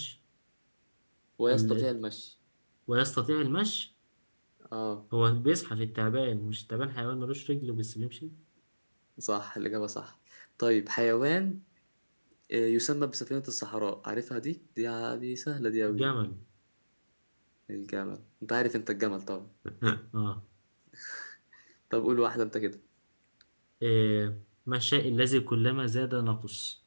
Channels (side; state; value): both; inverted; correlation -1.00